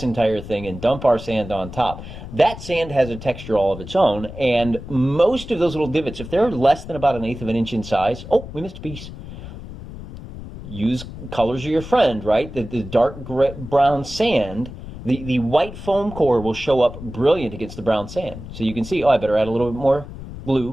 entire thing and dump our sand on top, that sand has a texture all of its own, and most of those little divots, if they're less than about 1/8 of an inch in size, oh, we missed a piece. Use colors are your friend, right? The dark brown sand, the white foam core will show up brilliant against the brown sand. So you can see, oh, I better add a little bit more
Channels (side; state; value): left; noise; rumble, 12 dB below the sound